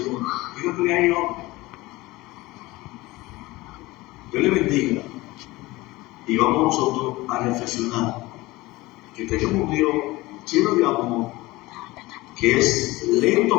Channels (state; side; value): quieter; right; 20.2 dB